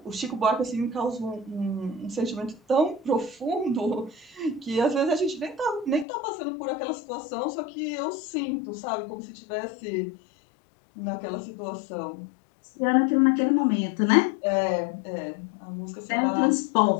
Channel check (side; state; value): right; drops out; at 6.1 s